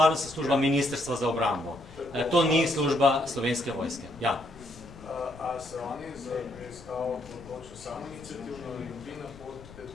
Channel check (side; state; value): left; noise; rumble, 19 dB below the sound